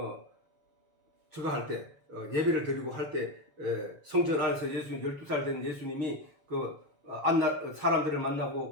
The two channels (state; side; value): late; left; 6.9 ms